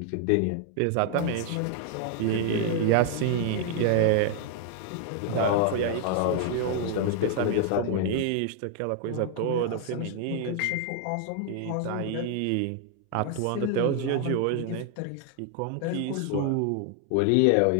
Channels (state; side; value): different; both; correlation 0.00